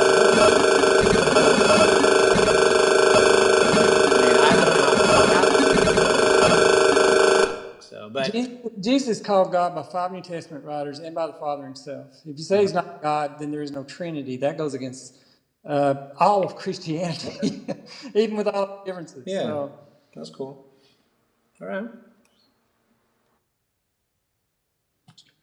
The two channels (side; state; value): both; identical; correlation 1.00